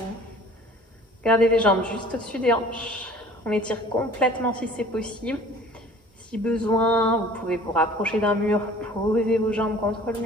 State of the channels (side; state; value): both; normal; correlation 0.48